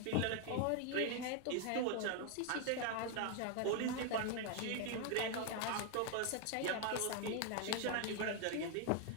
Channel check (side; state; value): both; different; correlation 0.01